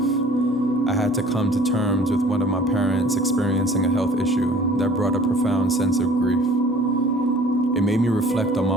I had to come to terms with one of my parents experiencing a health issue that brought a profound sense of grief. It made me reflect on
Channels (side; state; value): both; normal; correlation 0.50